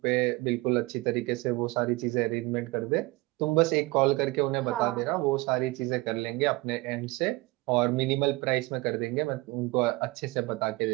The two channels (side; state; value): left; quieter; 22.3 dB